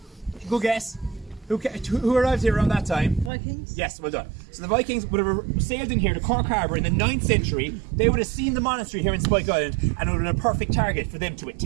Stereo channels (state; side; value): drops out; left; at 3.3 s